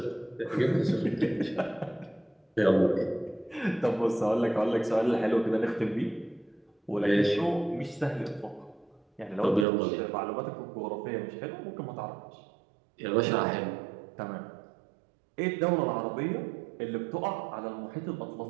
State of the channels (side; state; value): left; drops out; at 9.7 s